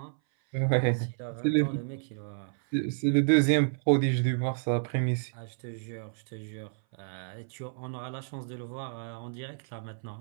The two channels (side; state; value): left; silent; 58 dB below the other